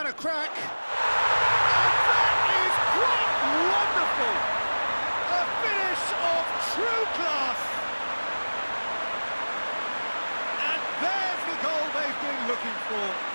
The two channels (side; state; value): both; inverted; correlation -1.00